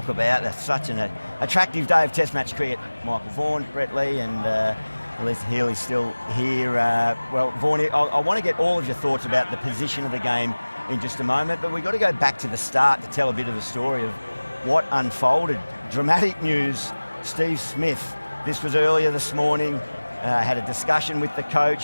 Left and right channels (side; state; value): both; inverted; correlation -1.00